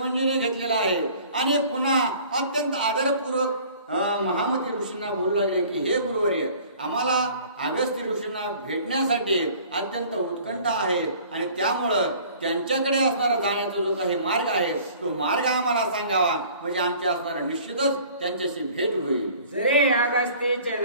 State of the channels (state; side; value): inverted; both; correlation -0.50